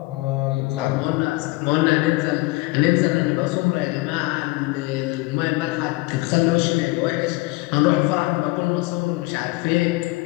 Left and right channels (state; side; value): quieter; right; 22.2 dB